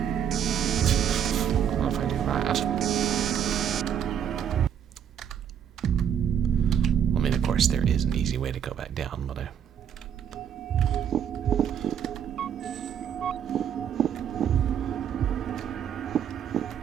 I don't know if I do that. I mean, of course, there is an easy way to go back down, but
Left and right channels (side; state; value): left; quieter; 8.8 dB